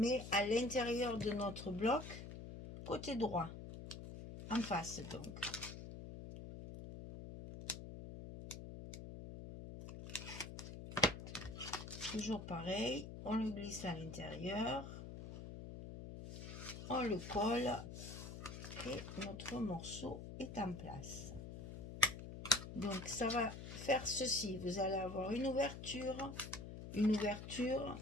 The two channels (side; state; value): left; noise; hum, 10 dB below the sound